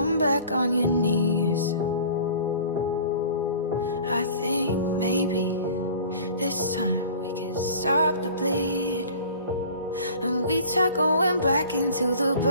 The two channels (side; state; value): both; inverted; correlation -0.45